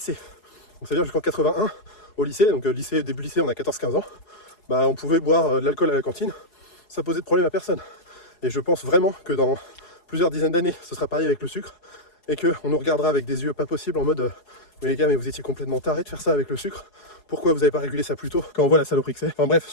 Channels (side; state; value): right; late; 4.8 ms